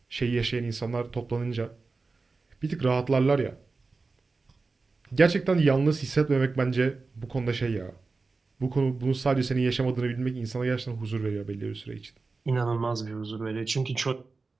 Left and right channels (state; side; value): quieter; left; 4.0 dB